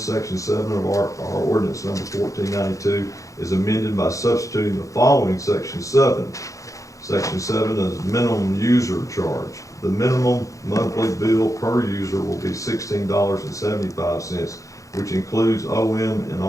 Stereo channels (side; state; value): right; late; 0.16 ms